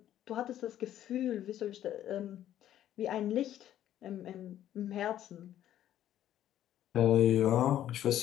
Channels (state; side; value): quieter; right; 11.8 dB